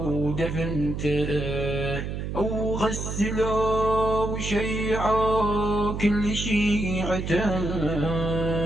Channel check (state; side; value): noise; right; hum, 5 dB below the sound